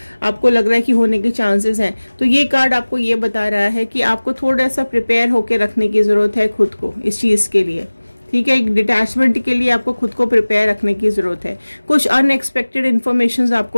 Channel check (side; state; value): both; inverted; correlation -1.00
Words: आपको लग रहा है कि होने के चांसेस हैं, तो ये कार्ड आपको ये बता रहा है कि आपको थोड़ा सा प्रिपेयर होके रखने की जरूरत है खुद को इस चीज के लिए, ठीक है। एक डिटैचमेंट के लिए आपको खुद को प्रिपेयर रखने की जरूरत है। कुछ अनएक्सपेक्टेड इन्फॉर्मेशन